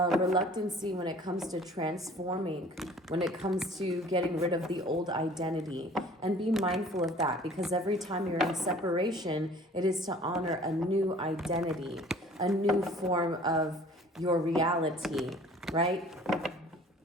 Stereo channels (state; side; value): normal; both; correlation 0.50